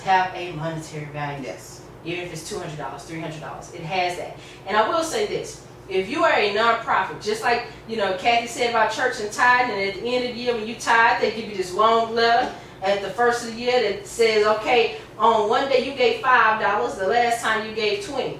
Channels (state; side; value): identical; both; correlation 1.00